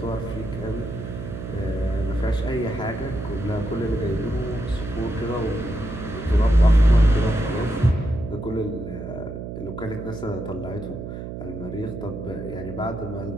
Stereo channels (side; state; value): right; noise; hum, 8 dB below the sound